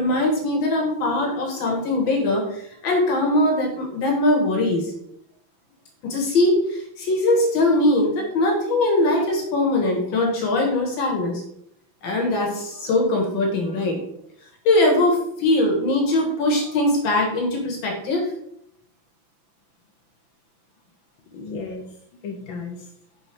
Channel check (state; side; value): late; right; 6.0 ms